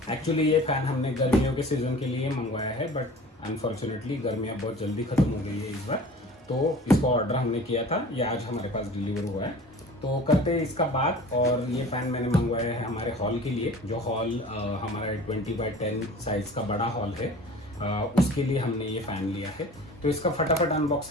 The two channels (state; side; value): normal; both; correlation 0.42